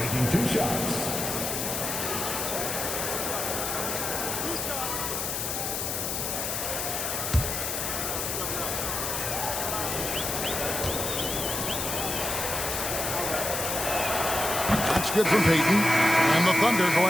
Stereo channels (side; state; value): left; noise; hiss, 2 dB below the sound